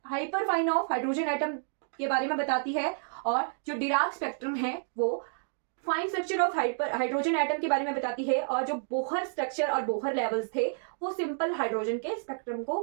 of hydrogen atom के बारे में बताती है, और जो डिराक स्पेक्ट्रम है वो fine structure of hydrogen atom के बारे में बताती है, और जो बोहर स्ट्रक्चर और बोहर लेवल्स थे वो सिंपल हाइड्रोजन के स्पेक्ट्रम को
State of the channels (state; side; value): silent; left; digital silence